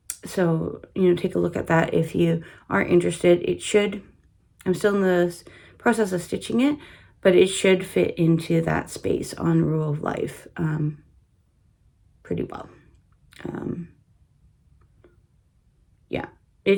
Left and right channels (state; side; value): identical; both; correlation 1.00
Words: So, take a look at that if you are interested. It should, I'm still in the process of stitching it, but it should fit into that space on Rule of Life pretty well. Yeah,